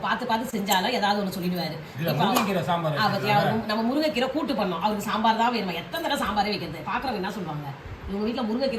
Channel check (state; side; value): identical; both; correlation 1.00